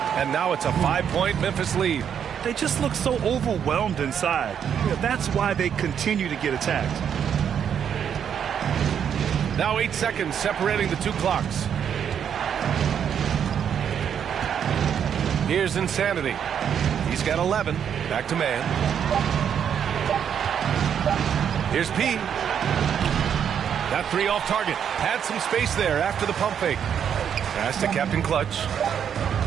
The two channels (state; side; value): quieter; left; 8.3 dB